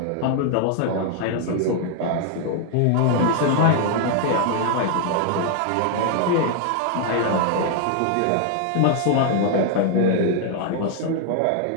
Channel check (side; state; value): both; different; correlation 0.00